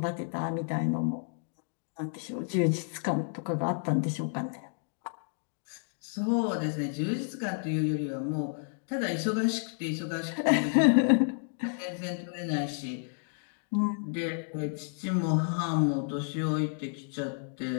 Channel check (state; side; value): silent; right; digital silence